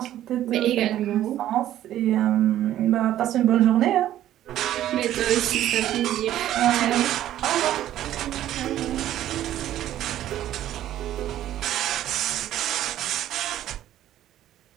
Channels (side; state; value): left; quieter; 12.6 dB